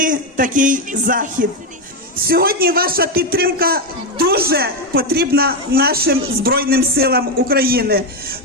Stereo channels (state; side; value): normal; both; correlation 0.08